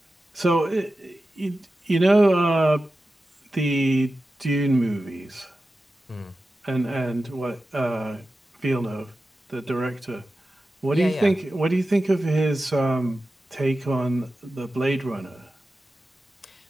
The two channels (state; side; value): normal; both; correlation 0.93